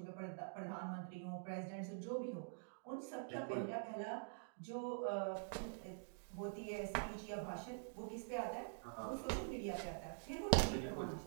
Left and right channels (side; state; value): left; silent; digital silence